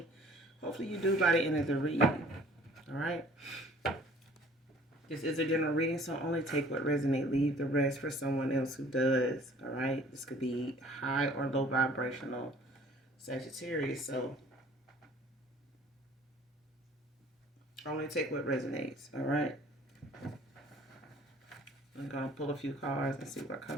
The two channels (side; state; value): both; normal; correlation 0.53